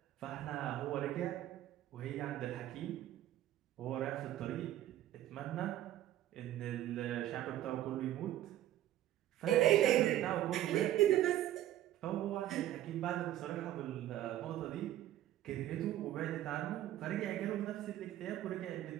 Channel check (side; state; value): left; quieter; 13.2 dB